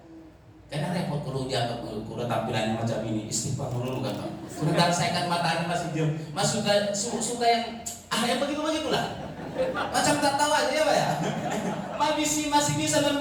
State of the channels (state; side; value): identical; both; correlation 1.00